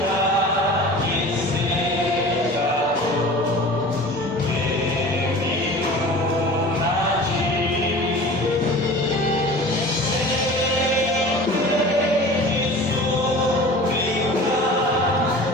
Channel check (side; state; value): both; normal; correlation 0.39